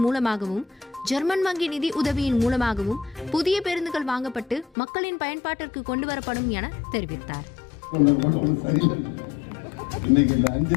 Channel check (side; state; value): right; drops out; at 4.7 s